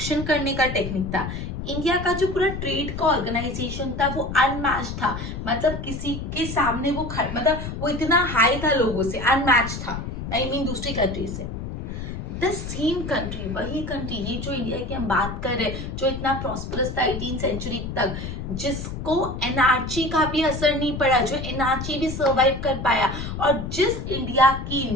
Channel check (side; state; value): left; noise; rumble, 6 dB below the sound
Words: करने का टेक्निक था, इंडिया का जो पूरा ट्रेड का ऑर्गेनाइजेशन था, वो अनमैच था. मतलब किसी के सामने वो मतलब वो इतना हाई था लोगों से, अनमैच था. आई मीन दूसरी कंट्री से. द सेम कंट्री, वही कंट्री, ये जो इंडिया की हम बात कर रहे हैं, जो इतना प्रॉस्परस था 18th सेंचुरी तक, जिसको एनआरची का भी असर नहीं पड़ा, जो एनआरची भी सर्वाइव कर पाया, और जिस इंडिया की